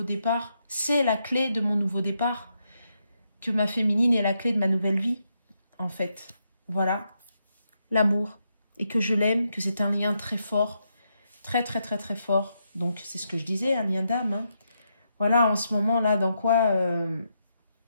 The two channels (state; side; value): inverted; both; correlation -0.81